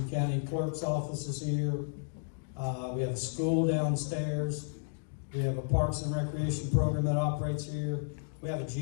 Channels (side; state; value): right; silent; digital silence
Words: County clerk's offices here. We have a school downstairs. We have a parks and recreation program that operates here. We have a